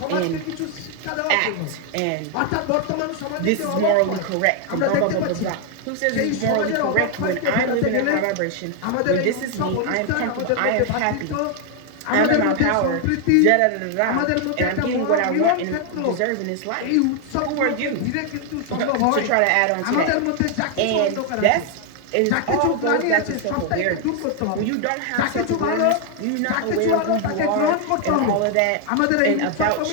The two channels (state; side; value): different; both; correlation 0.01